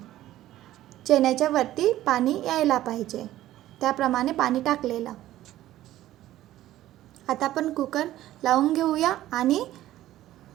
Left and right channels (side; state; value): left; quieter; 14.2 dB